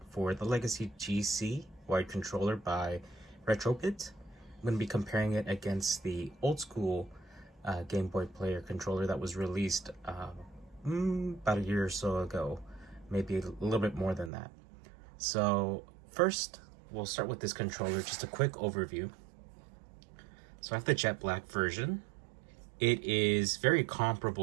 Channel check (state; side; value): drops out; left; at 14.3 s